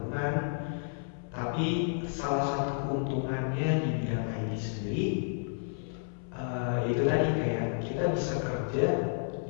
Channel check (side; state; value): right; silent; 57 dB below the other